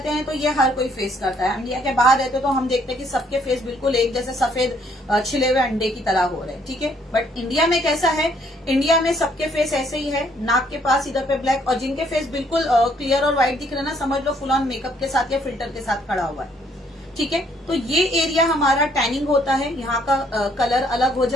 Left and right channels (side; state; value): both; normal; correlation 0.66